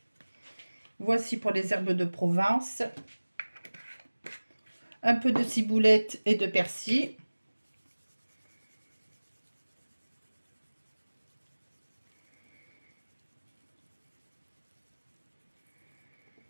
Voici pour les herbes de Provence. Un peu de ciboulette et de persil.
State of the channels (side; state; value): both; inverted; correlation -1.00